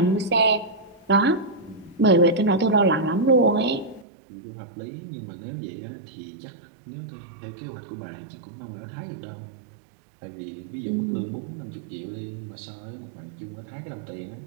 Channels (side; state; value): left; drops out; at 4.0 s